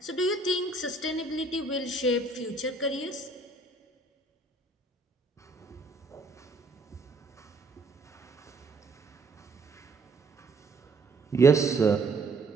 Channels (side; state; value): left; quieter; 3.2 dB